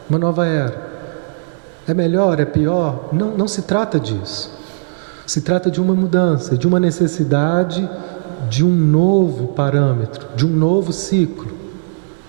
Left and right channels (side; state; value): left; silent; 68 dB below the other